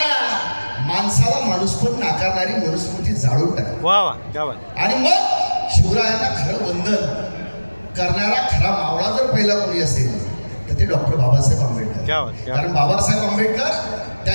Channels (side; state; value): both; inverted; correlation -1.00